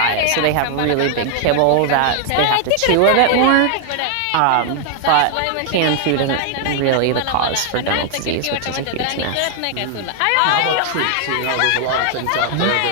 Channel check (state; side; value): different; both; correlation 0.00